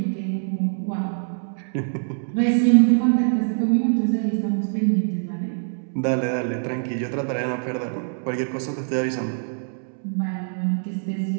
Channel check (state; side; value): silent; left; digital silence